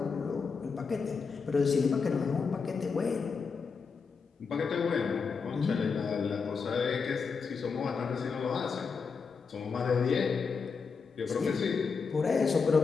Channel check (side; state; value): right; quieter; 5.3 dB